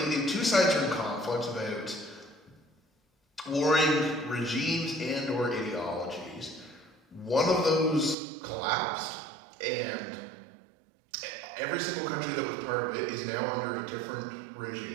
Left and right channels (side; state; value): left; drops out; at 8.2 s